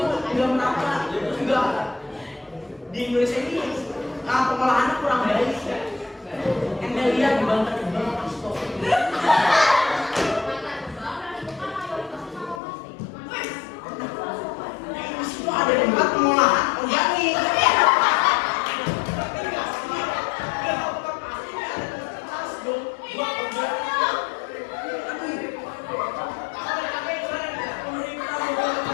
merata. Enggak. Di Indonesia ini pengolahannya kurang baik. Anda lihat di Banten Astor. Di situ ada tempat pengolahan organik.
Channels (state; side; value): drops out; right; at 12.6 s